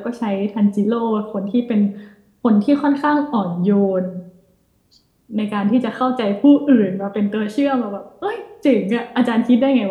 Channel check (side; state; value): both; identical; correlation 1.00